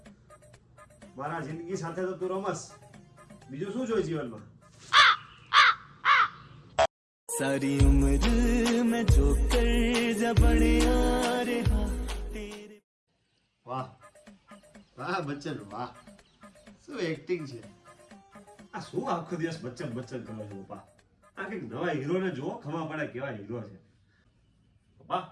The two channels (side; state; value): both; identical; correlation 1.00